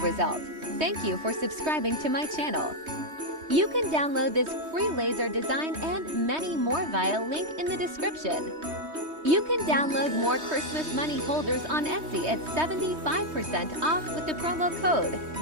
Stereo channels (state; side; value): late; left; 3.2 ms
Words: Thank you for subscribing to my channel. You can download this free laser design and many more via link in the description. You can download more Christmas money holders on Etsy at 75% off with the promo code